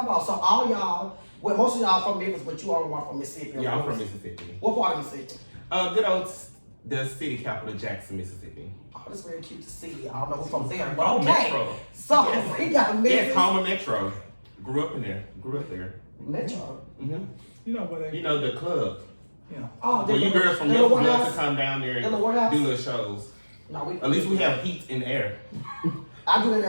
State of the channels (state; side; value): inverted; both; correlation -1.00